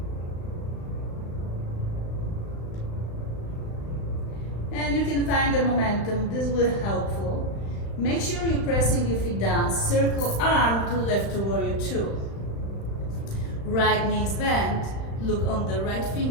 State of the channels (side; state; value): right; late; 35 ms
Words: And you can find the momentum. This will be helpful. Make sure you're pressing your feet down. Circle arm to lift to warrior two. Right knee is bent. Look on the right